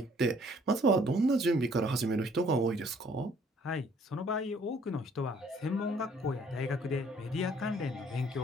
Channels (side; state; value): both; normal; correlation 0.60